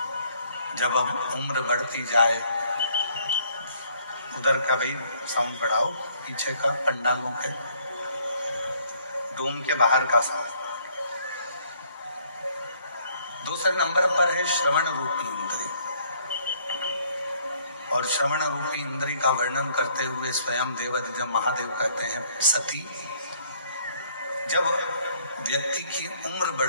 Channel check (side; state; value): both; inverted; correlation -0.64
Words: जब अब उम्र बढ़ती जाए, उधर का भाई साउंड बढ़ाओ, पीछे का पंडालों के डोम के बाहर का साउंड। दूसरे नंबर पर है श्रवण रूपी इंद्री। और श्रवण रूपी इंद्री का वर्णन करते हुए स्वयं देवाधिदेव महादेव कहते हैं, सती जब व्यक्ति की उम्र